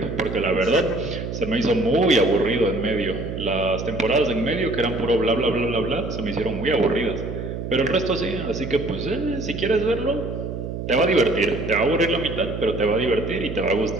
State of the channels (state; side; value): noise; right; hum, 6 dB below the sound